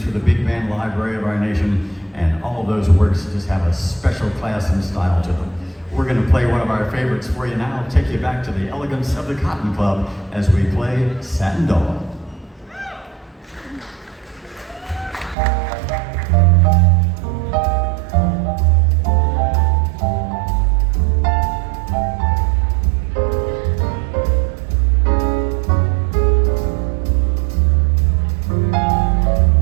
for the big band library of our nation, and all of those works just have a special class and style to them. We're going to play one of our favorites for you now, take you back to the elegance of the Cotton Club as we play Satin Dawn.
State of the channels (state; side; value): drops out; left; at 15.4 s